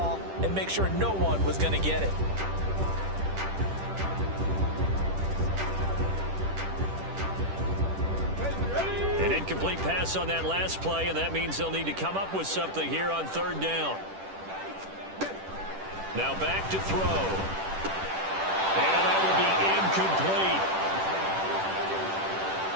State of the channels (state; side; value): late; left; 10 ms